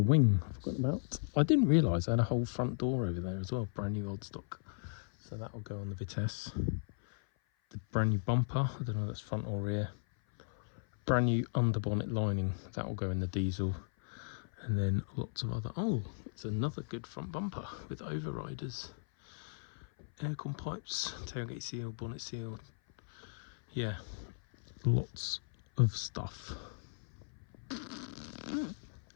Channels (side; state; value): right; silent; 53 dB below the other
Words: wing I've forgotten about. I didn't realise I had a whole front door over there as well, brand new old stock. So that will go on the Vitesse. The brand new bumper, I don't know if that's front or rear. Brand new underbonnet lining, that will go in the diesel. And then lots of other, oh, it's another good front bumper with overriders. Aircon pipes, tailgate seal, bonnet seal. Yeah, lots of stuff.